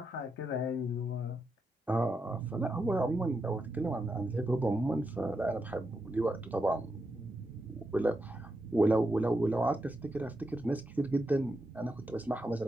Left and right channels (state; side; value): normal; both; correlation 0.84